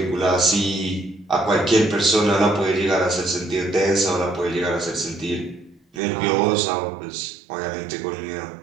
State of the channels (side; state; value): left; drops out; at 6.0 s